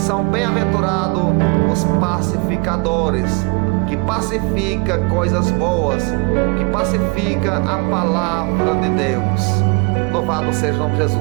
bem-aventurados os pacificadores, que pacifica coisas boas, que pacifica a palavra de Deus. Louvado seja o nome de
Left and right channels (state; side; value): quieter; left; 30.2 dB